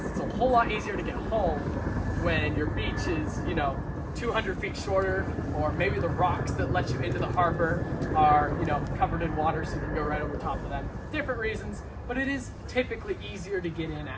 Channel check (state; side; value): identical; both; correlation 1.00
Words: it's a whole lot easier to get home when your beach is, 200 feet shorter, or maybe the rocks that let you into the harbor are, covered in water so you can go right over top of them. Different reasons, but it is typically easier to get in